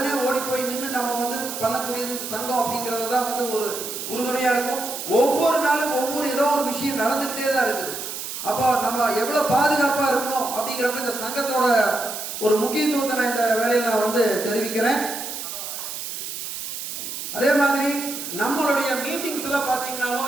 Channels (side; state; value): right; noise; hiss, 7 dB below the sound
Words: ஓடி போய் நின்று நம்ம வந்து பண்ணக்கூடியது சங்கம் அப்படிங்கிறது தான் வந்து ஒரு உறுதுணையா இருக்கும். ஒவ்வொரு நாளும் ஒவ்வொரு ஏதோ ஒரு விஷயம் நடந்துகிட்டே தான் இருக்குது. அப்போ நம்ம எவ்வளவு பாதுகாப்பா இருக்கணும் அப்படிங்கிறப்ப இந்த சங்கத்தோட ஒரு முக்கியத்துவத்தை நான் இந்த வேலையில் நான் வந்து தெரிவிக்கிறேன். அதே மாதிரி நம்மளுடைய மீட்டிங்ஸ் எல்லாம்